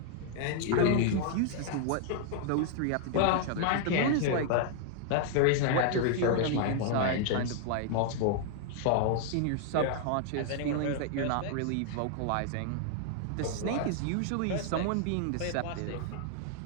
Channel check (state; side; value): different; both; correlation 0.00